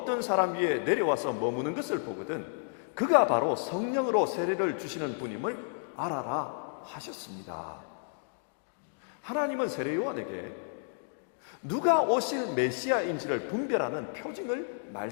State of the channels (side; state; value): right; silent; digital silence